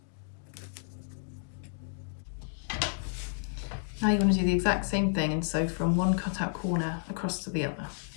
Now you're going to do the exact same thing and sew from one cutout corner across to the other.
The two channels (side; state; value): right; silent; digital silence